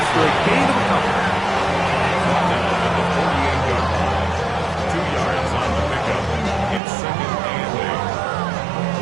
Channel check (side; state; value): left; drops out; at 6.8 s